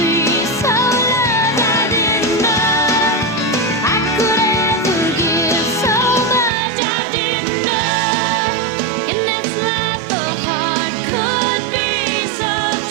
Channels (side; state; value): left; drops out; at 6.5 s